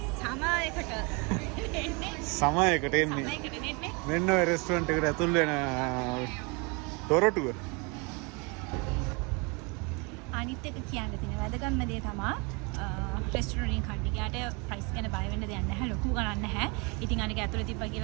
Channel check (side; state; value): left; quieter; 30.1 dB